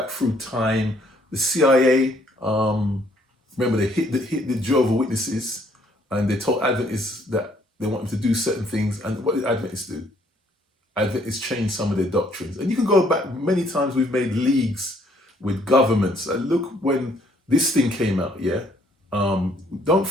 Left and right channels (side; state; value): both; normal; correlation 0.65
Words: through time. The CIA, remember they hit the Jehovah's Witnesses, and they told Adventists that they want them to do certain things. And what did Adventists do? Adventists changed some of their doctrines. And you can go back many times. We've made leagues with governments. And look, when this thing came out, yeah, don't